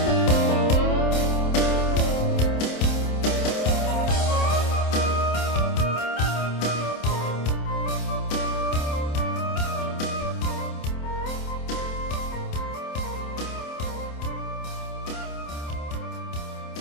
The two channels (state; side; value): late; right; 27 ms